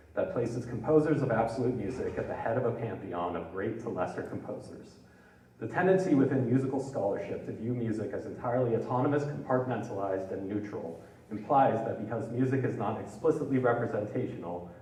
that places composers of absolute music at the head of a pantheon of great to lesser composers. The tendency within musical scholarship to view music as entirely autonomous, compartmentalized, and neutral implies that because music is not explicitly representational,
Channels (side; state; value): both; identical; correlation 1.00